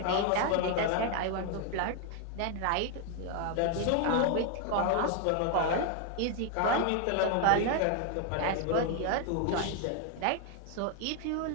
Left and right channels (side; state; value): both; different; correlation 0.01